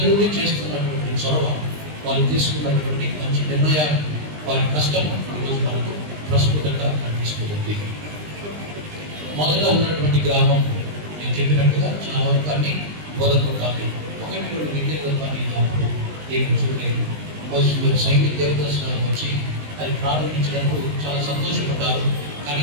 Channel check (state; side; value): late; left; 20 ms